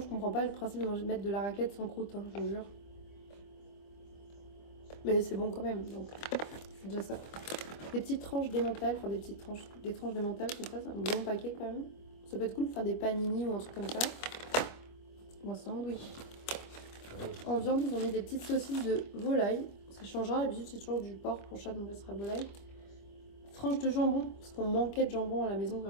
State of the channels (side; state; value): right; late; 25 ms